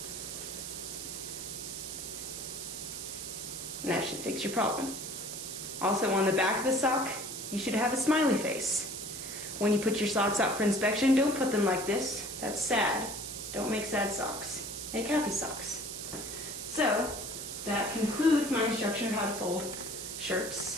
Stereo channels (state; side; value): noise; right; hiss, 7 dB below the sound